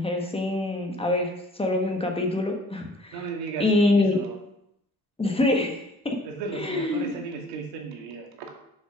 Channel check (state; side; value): normal; both; correlation 0.53